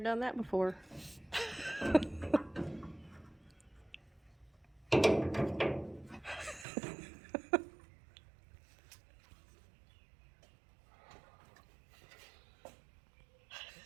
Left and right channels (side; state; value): left; drops out; at 6.7 s